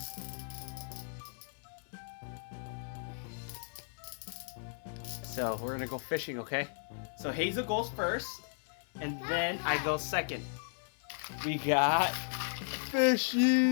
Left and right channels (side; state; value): right; silent; 54 dB below the other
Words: So we're gonna go fishing, okay? So Hazel goes first, and then I go second. We got